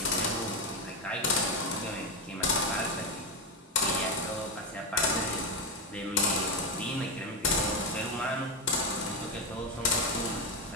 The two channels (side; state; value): both; normal; correlation 0.11